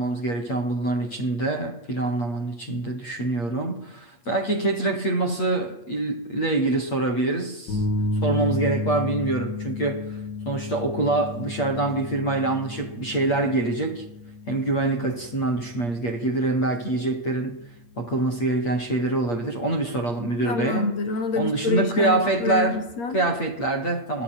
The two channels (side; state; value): right; late; 8.5 ms